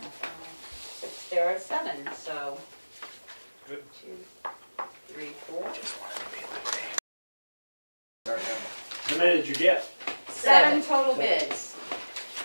There are 7, so. Good. 2, 3, 4. How many did you get? 7 total bids.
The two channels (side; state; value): both; inverted; correlation -1.00